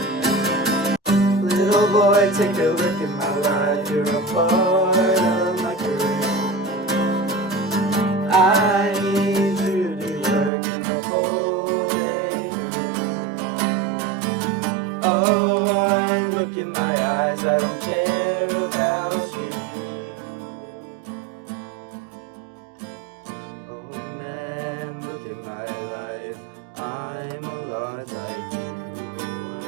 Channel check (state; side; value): drops out; left; at 10.5 s